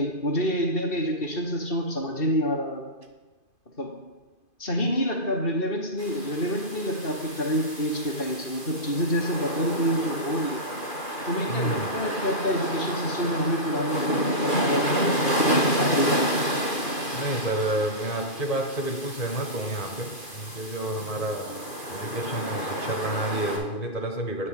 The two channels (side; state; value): right; late; 2.5 ms